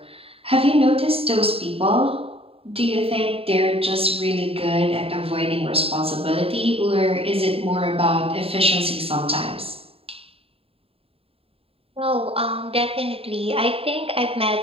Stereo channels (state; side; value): late; left; 0.27 ms